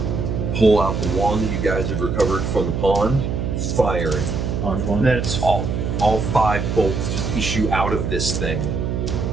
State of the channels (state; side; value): noise; right; hum, 2 dB below the sound